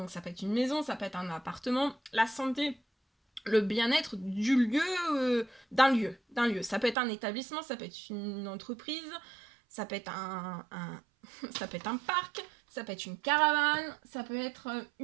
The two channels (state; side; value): drops out; left; at 7.0 s